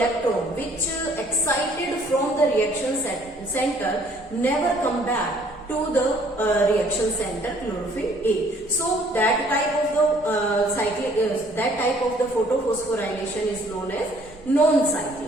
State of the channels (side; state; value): both; normal; correlation 0.60